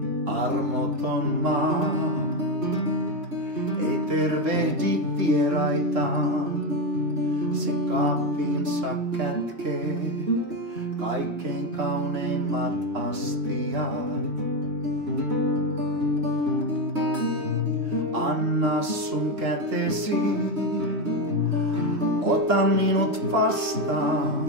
Armoton maa ei tervehdi vieraitaan, se kaappiinsa kätkee kaikkein kauneimmat astiat. Anna sun kätesi, ota minut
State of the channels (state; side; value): late; left; 3.7 ms